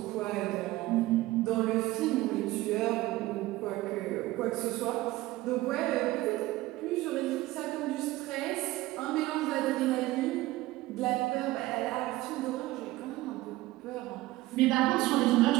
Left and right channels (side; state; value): left; quieter; 18.0 dB